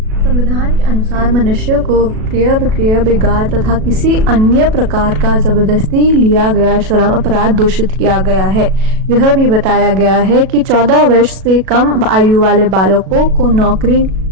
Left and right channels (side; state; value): left; late; 37 ms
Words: संविधान के अनुसार मनुष्य को क्रय विक्रय, बिगाड़ तथा किसी अन्य प्रकार का जबरदस्ती लिया गया श्रम अपराध दूषित किया गया है। यह भी बताया गया है कि 14 वर्ष से कम आयु वाले बालकों को नौकरी